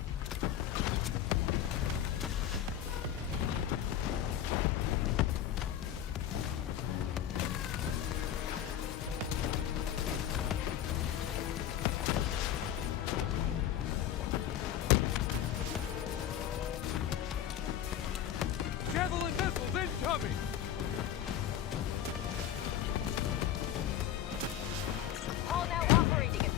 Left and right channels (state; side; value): quieter; right; 10.6 dB